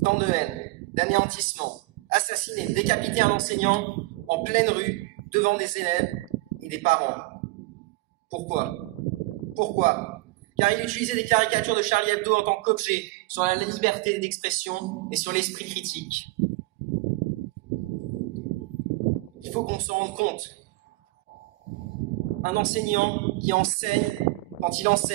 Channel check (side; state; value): left; quieter; 21.4 dB